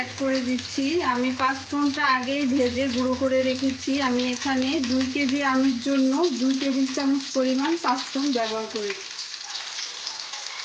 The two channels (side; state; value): both; identical; correlation 1.00